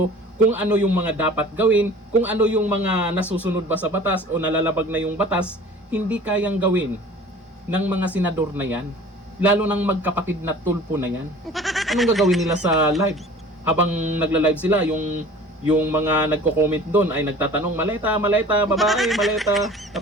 kung ano yung mga dapat gawin, kung ano yung mga nasusunod ba sa batas o nalalabag na yung batas, hindi kayang gawin ng mga senador na yan. Lalo ng magkapatid na Tulfo na yan. Anong gagawin nila sa live? Habang nagla-live sila, yung mga nagko-comment doon ay nagtatanong, maleta, babae, maleta.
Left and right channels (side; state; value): both; normal; correlation 0.45